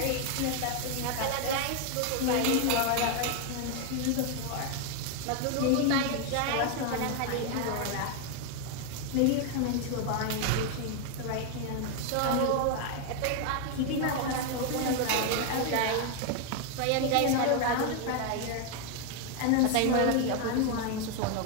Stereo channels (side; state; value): both; different; correlation 0.01